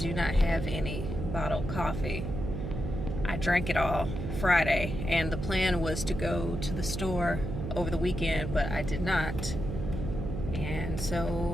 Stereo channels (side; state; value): right; noise; hum, 5 dB below the sound